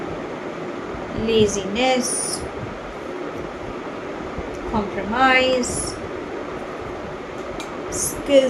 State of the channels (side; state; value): both; identical; correlation 1.00